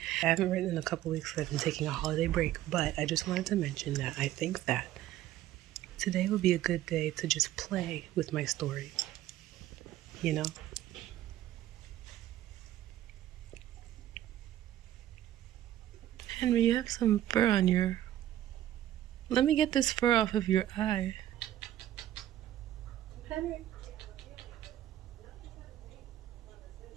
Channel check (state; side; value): quieter; left; 13.1 dB